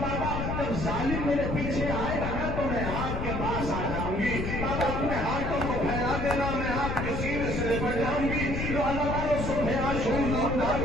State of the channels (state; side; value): noise; left; rumble, 3 dB below the sound